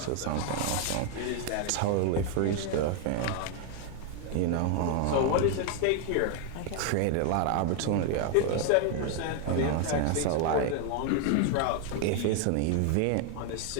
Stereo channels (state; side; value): different; both; correlation 0.00